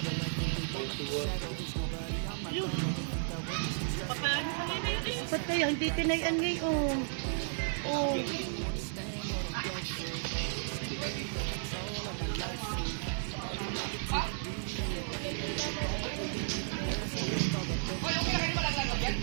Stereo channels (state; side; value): silent; left; digital silence